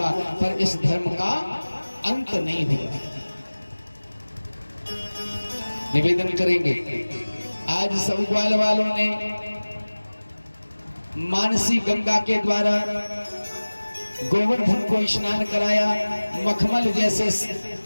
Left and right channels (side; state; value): both; inverted; correlation -1.00